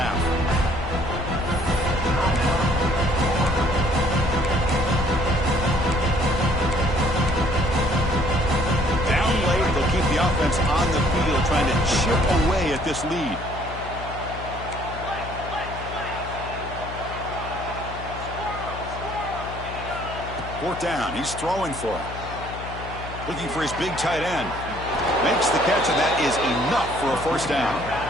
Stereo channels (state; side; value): noise; left; hum, 11 dB below the sound